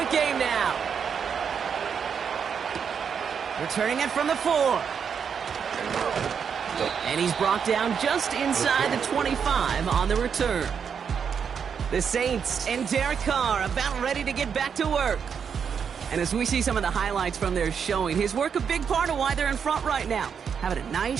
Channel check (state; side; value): quieter; left; 6.9 dB